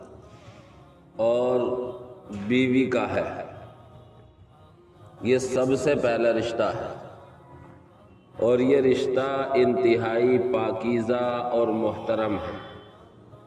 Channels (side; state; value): both; identical; correlation 1.00